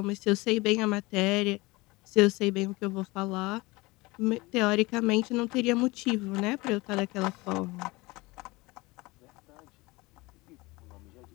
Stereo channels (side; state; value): right; quieter; 22.7 dB